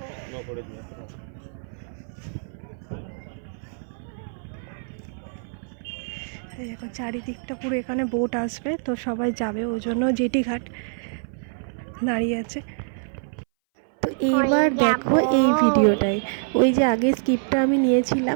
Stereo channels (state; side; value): silent; left; 59 dB below the other